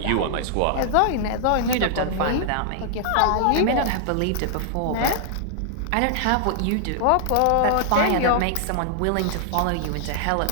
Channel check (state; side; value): different; both; correlation -0.01